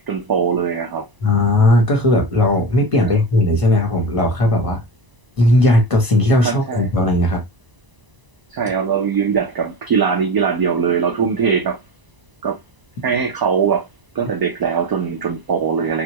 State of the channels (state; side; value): late; left; 1.0 ms